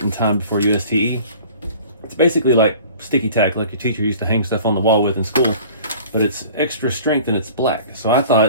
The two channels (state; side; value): inverted; both; correlation -0.46